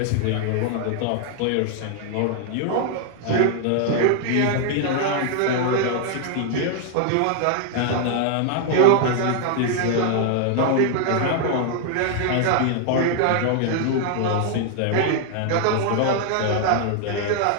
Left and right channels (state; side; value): different; both; correlation 0.00